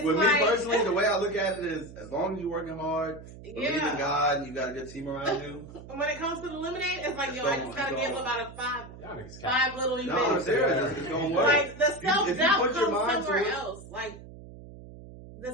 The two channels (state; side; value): noise; right; hum, 16 dB below the sound